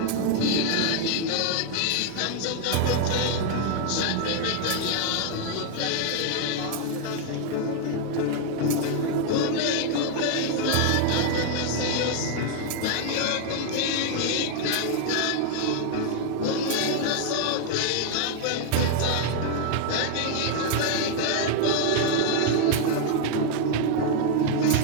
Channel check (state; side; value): different; both; correlation 0.00